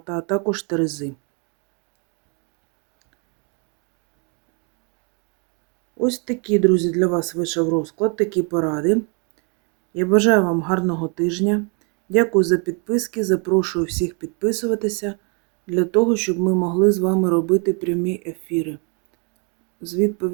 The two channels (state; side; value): quieter; left; 36.2 dB